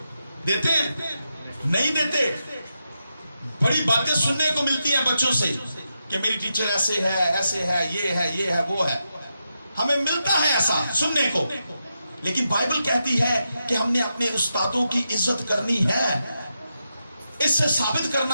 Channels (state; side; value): inverted; both; correlation -0.87